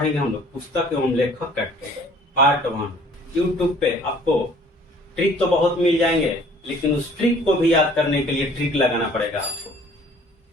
हम लोग पुस्तक एवं लेखक का पार्ट 1। यूट्यूब पे आपको ट्रिक तो बहुत मिल जाएंगे, लेकिन उस ट्रिक को भी याद करने के लिए ट्रिक लगाना पड़ेगा।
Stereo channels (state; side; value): normal; both; correlation 0.54